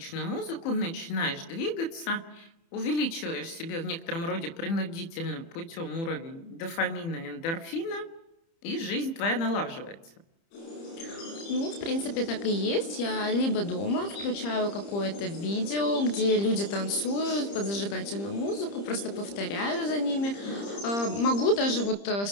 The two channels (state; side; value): late; right; 30 ms